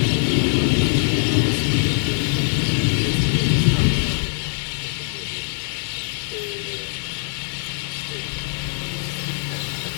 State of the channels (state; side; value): silent; right; digital silence